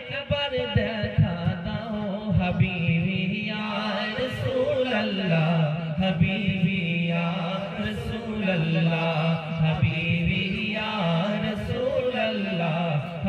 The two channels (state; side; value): identical; both; correlation 1.00